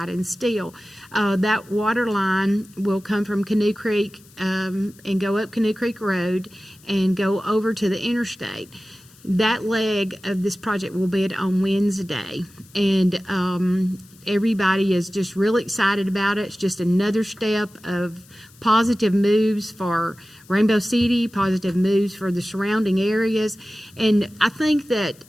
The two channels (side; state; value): left; noise; hiss, 26 dB below the sound